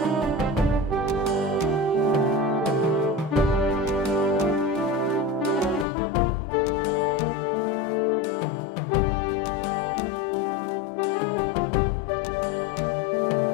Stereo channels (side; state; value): right; drops out; at 5.9 s